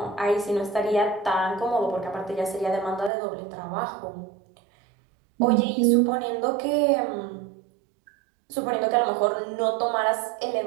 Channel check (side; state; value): left; drops out; at 3.1 s